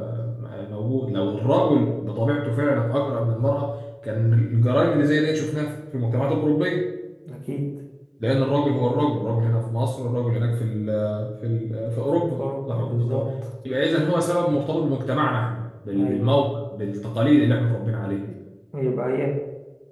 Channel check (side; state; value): both; identical; correlation 1.00